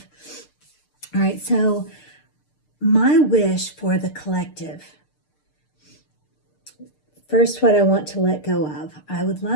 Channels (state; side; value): late; right; 6.6 ms